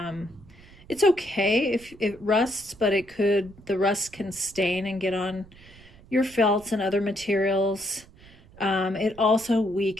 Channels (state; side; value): noise; right; rumble, 23 dB below the sound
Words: It's okay if it rusts, but the rust can stain and get on your felts and other materials. It also